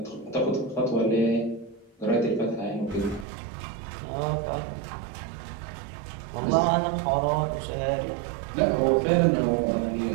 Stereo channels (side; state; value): left; drops out; at 3.2 s